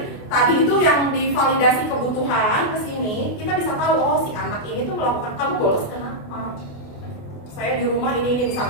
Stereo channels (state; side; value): late; right; 28 ms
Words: tadi itu yang divalidasi kebutuhan ke sini, kita bisa tahu oh si anak ini tuh melakukan, kamu bolos kenapa? Saya di rumah ini